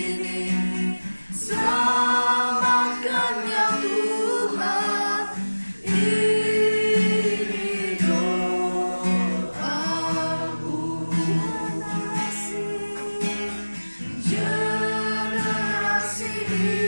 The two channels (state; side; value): inverted; both; correlation -1.00